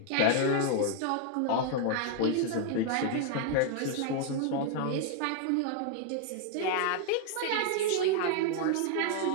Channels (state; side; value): different; both; correlation 0.00